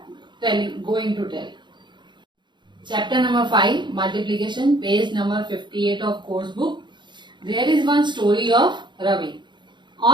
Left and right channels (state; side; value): late; left; 0.22 ms